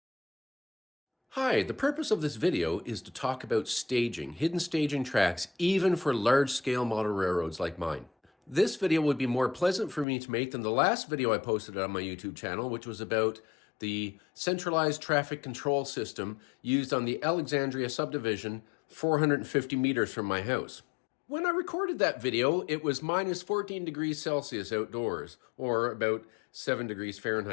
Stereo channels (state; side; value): drops out; right; at 10.1 s